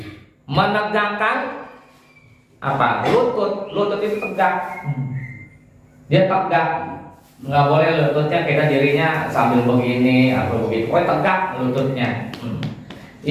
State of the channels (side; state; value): both; identical; correlation 1.00